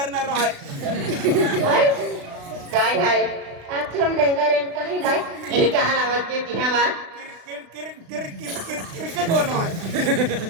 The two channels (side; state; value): left; late; 36 ms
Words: आहे काय आहे आथम डेंगारेन काही नाही हे कहा आवाज के तिहावा क्रिकेट वाला है